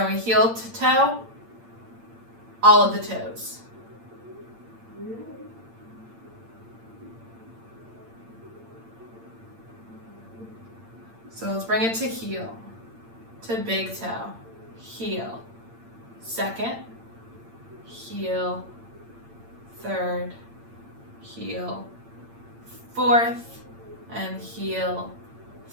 heel to toe, all of the toes. So let's bring it to heel, to big toe, heel, second, heel, third, heel, fourth, and heel,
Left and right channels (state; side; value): late; left; 8.8 ms